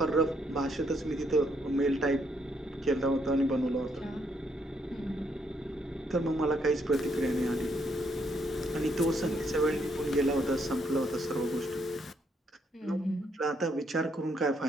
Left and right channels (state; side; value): normal; both; correlation 0.73